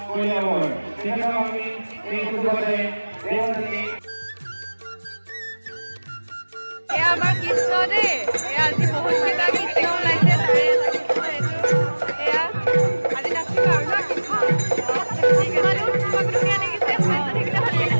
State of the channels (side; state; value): both; inverted; correlation -1.00